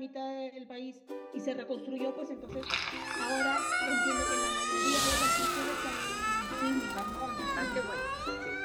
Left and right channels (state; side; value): identical; both; correlation 1.00